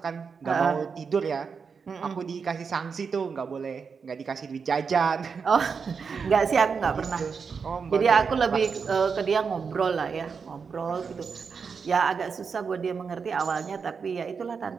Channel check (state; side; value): quieter; left; 5.7 dB